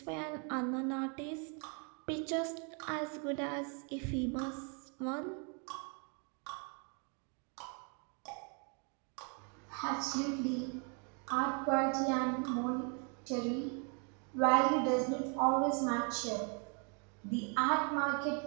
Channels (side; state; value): left; quieter; 37.4 dB